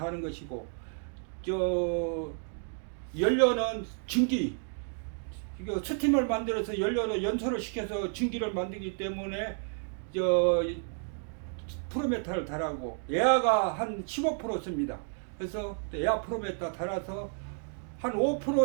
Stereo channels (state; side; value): silent; left; 56 dB below the other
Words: 것이고 연료는 증기 이거 스팀을 만들어서 연료로 연소를 시켜서 증기를 만들기 때문에 프로메타를 달하고 에아가 한 15% 씁니다. 그래서 에아 프로메타 달아서 한